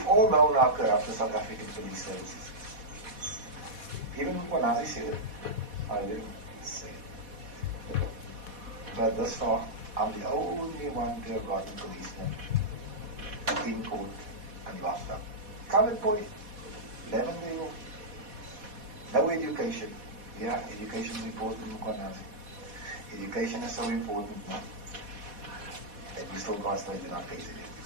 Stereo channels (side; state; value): left; late; 4.1 ms